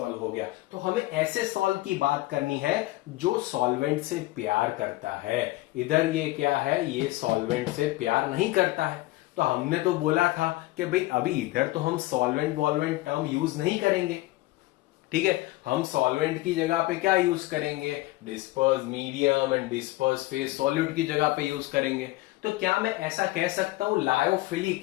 हो गया। तो हमें ऐसे सॉल्व की बात करनी है जो सॉल्वेंट से प्यार करता है। इधर ये क्या है? ये सॉल्वेंट से प्यार नहीं करता है। तो हमने तो बोला था कि भाई अभी इधर तो हम सॉल्वेंट वॉल्वेंट टर्म यूज नहीं करेंगे, ठीक है। हम सॉल्वेंट की जगह पे क्या यूज करेंगे? Disperse medium and disperse phase solute की जगह पे यूज करेंगे। तो क्या मैं ऐसा कह सकता हूं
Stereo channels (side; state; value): right; quieter; 19.0 dB